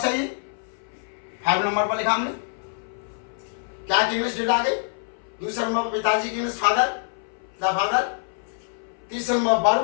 ही 5 नंबर पर लिखा हमने। क्या की इंग्लिश डिड आ गई। दूसरे नंबर पर पिताजी की इंग्लिश फादर, द फादर। तीसरे नंबर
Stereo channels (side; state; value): right; silent; 60 dB below the other